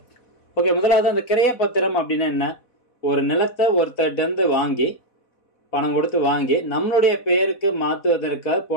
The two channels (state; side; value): late; right; 4.1 ms